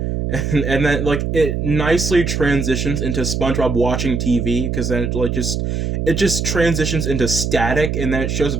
and then like it nicely transitions into SpongeBob watching TV, because then it just transitions into static, and then it shows a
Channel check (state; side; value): noise; right; hum, 1 dB below the sound